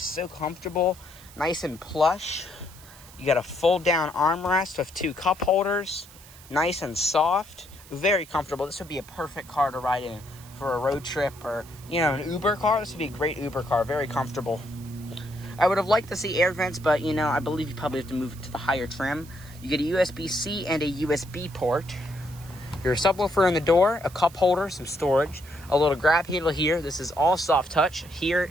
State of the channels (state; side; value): noise; right; hiss, 21 dB below the sound